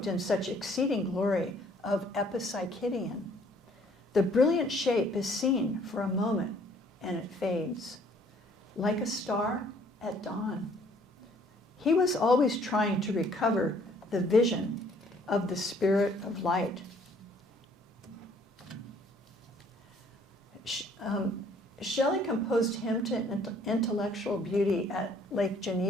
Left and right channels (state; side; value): normal; both; correlation 0.60